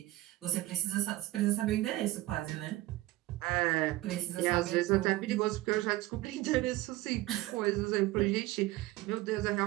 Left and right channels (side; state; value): left; quieter; 17.6 dB